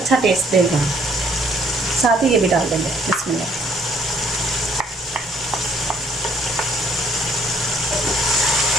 टेस्ट देगा। साथ ही ये भी डाल देंगे। बिस्मिल्लाह।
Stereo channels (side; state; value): both; normal; correlation 0.64